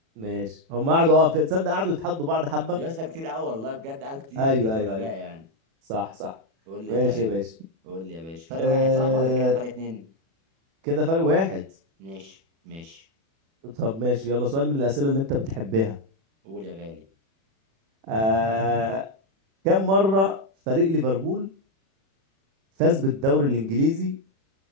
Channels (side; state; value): left; late; 36 ms